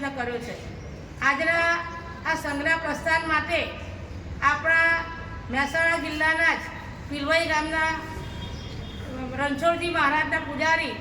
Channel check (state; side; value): identical; both; correlation 1.00